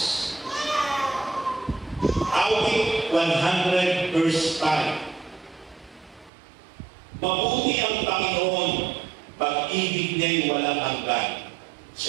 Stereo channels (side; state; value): left; drops out; at 6.3 s